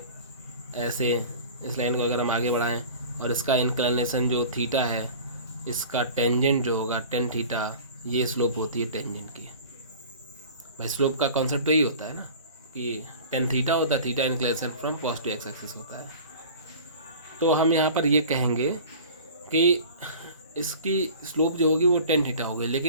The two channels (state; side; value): inverted; both; correlation -0.41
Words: ऐसे, इस लाइन को अगर हम आगे बढ़ाएं और इसका इंक्लिनेशन जो थीटा है, इसका टेंजेंट जो होगा टेन थीटा, ये स्लोप होती है टेंजेंट की। भाई स्लोप का कॉन्सेप्ट तो यही होता है ना कि टेन थीटा होता है, theta inclination from positive x axis होता है। तो हम यहाँ पर ये कहेंगे कि इसकी स्लोप जो होगी वो टेन थीटा होगी,